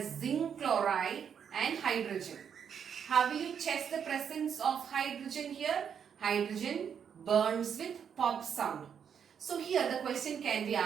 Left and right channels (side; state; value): left; quieter; 7.7 dB